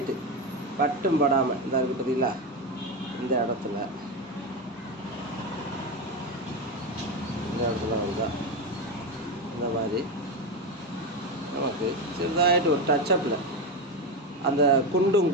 பட்டும் படாமல் இந்த இருக்குது பார்த்தீங்களா, இந்த இடத்துல வந்தால் இந்த மாதிரி நமக்கு சிறுதாயிட்டு ஒரு டச்சப்பில் அந்த குண்டும்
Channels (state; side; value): normal; both; correlation 0.15